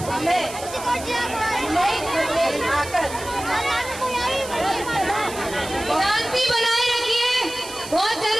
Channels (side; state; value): right; noise; hiss, 13 dB below the sound